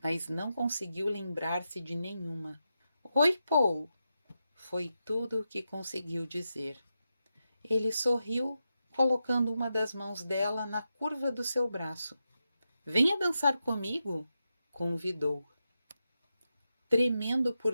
mas não conseguiu lembrar-se de nenhuma. Oi, Paul! Foi tudo o que conseguiu dizer. Ele sorriu, colocando uma das mãos dela na curva do seu braço. Venha dançar comigo, convidou. Tremendo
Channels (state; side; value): inverted; both; correlation -0.88